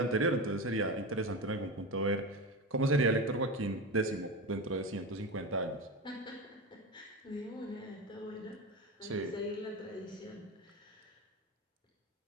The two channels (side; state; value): both; normal; correlation 0.21